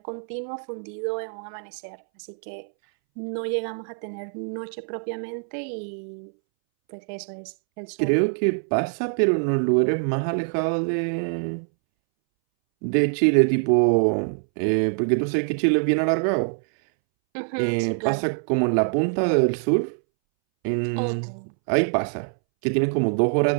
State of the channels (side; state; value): left; silent; 62 dB below the other